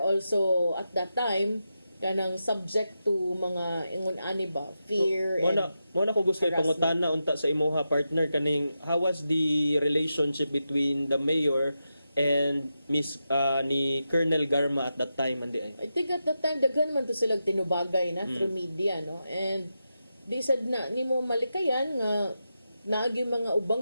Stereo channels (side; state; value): both; inverted; correlation -0.88